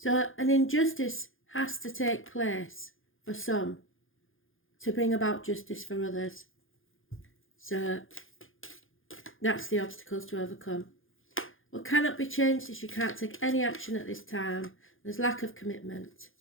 an injustice has to take place for some to bring about justice for others. So, that's the obstacles to overcome. What cannot be changed is you can't take any action at this time. There's lack of commitment.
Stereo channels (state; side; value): late; right; 0.59 ms